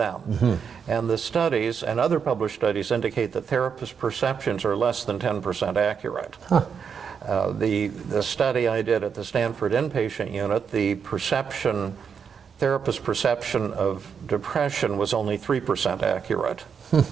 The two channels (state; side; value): quieter; left; 6.7 dB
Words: And the studies and other published studies indicate that therapists' perceptions are less than 10% accurate. The study I did at the Stanford inpatient unit, the therapist perception of depression was only 3% accurate.